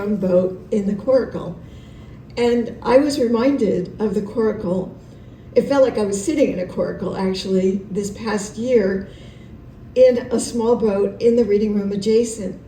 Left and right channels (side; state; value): both; identical; correlation 1.00